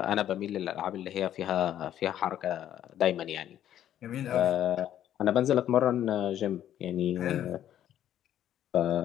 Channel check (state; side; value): quieter; right; 11.2 dB